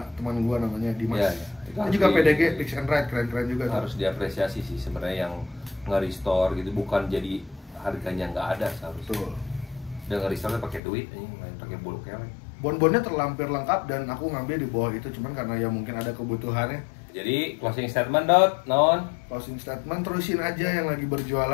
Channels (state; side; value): drops out; right; at 10.8 s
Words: teman gua namanya Dimas. Iya, iya. Itu Dia harus juga di- PDG, Fix and Ride, keren-keren juga tuh. Harus diapresiasi sih sebenarnya yang nge-restore gitu, bukan jadi harganya nggak ada seharusnya. Betul. Dia nge-restore pakai duit, ini main pakai bulu kelek. Bon-bonnya terlampir lengkap dan aku ngambil di bawah itu cuman karena ya mungkin ada kebutuhannya. Jadi closing statement dot non. Closing statement, terusin aja yang lagi